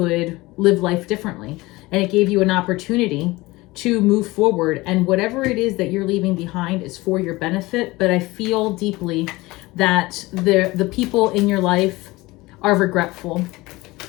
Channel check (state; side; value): quieter; right; 21.0 dB